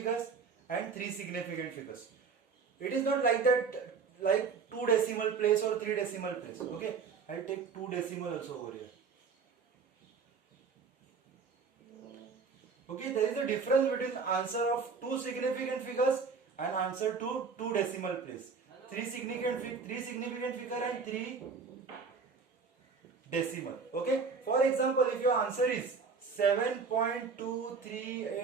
and 3 significant figures. It is not like that, like 2 decimal place or 3 decimal place. Okay, I will take 2 decimal also over here. Okay, there is a difference between answer of 2 significant figures and answer to 2 decimal place. 3 significant figure and 3 decimal. Okay, for example, if your answer is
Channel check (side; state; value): left; quieter; 5.2 dB